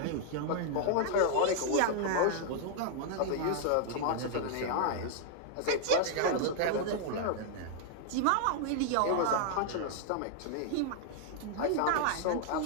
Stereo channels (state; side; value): different; both; correlation 0.00